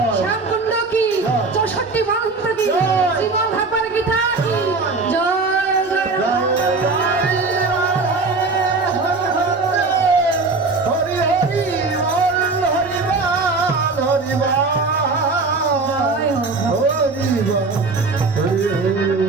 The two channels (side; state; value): left; quieter; 3.9 dB